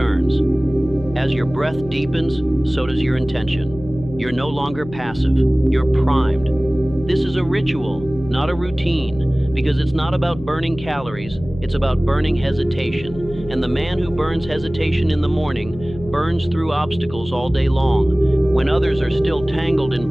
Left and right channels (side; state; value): left; noise; hum, 15 dB below the sound